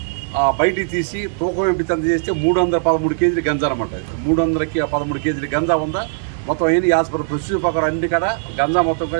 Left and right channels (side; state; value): left; silent; digital silence